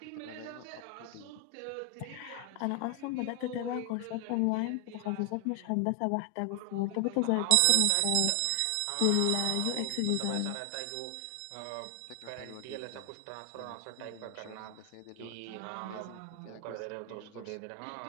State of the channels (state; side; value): different; both; correlation 0.00